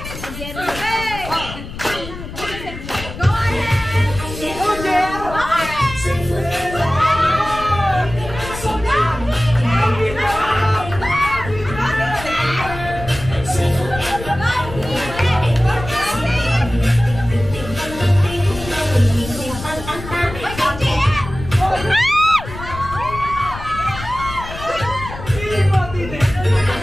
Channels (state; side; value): noise; left; rumble, 11 dB below the sound